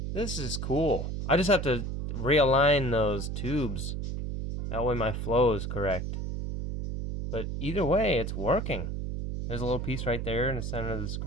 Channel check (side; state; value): right; noise; hum, 4 dB below the sound